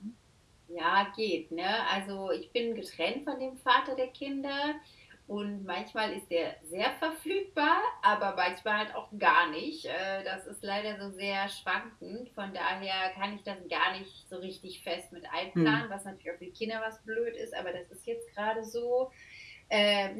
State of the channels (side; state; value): both; identical; correlation 1.00